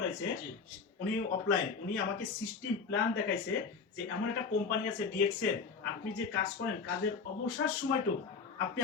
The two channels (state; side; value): quieter; right; 5.2 dB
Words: জি। উনি অফলাইন, উনি আমাকে সিস্টেম প্ল্যান দেখাইছে যে এমন একটা কোম্পানি আছে ডিএক্সএল, আপনি যে কাজ করেন কাজের অবসর সময়টুকু আপনি